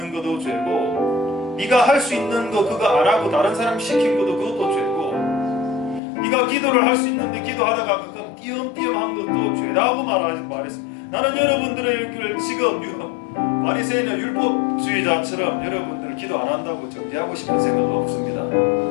것도 죄고 네가 할 수 있는 거 그거 안 하고 다른 사람 시킨 것도 그것도 죄고 네가 기도를 할 수 있는데 기도하다가 그거 띄엄띄엄한 것도 죄라고 말했습니다. 나는 여러분들을 지금 바리새인이나 율법주의자처럼 여러분들 기도 안 한다고 정죄하고 싶은 생각 없습니다.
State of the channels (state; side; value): drops out; right; at 6.0 s